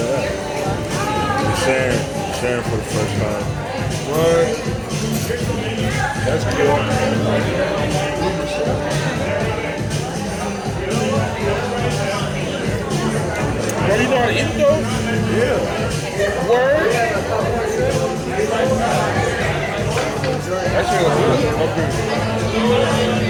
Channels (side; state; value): both; identical; correlation 1.00